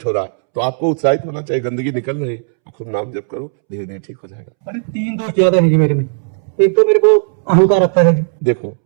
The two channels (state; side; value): silent; left; 70 dB below the other